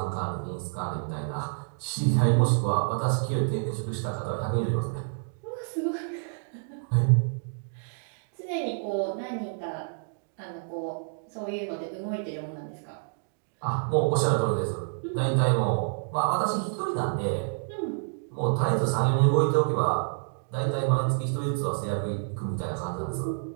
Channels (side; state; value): left; silent; digital silence